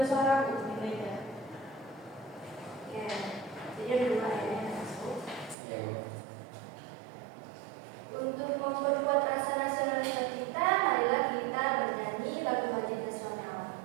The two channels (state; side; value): drops out; left; at 5.6 s